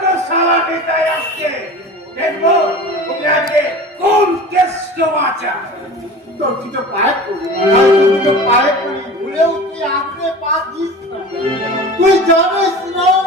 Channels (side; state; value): both; normal; correlation 0.36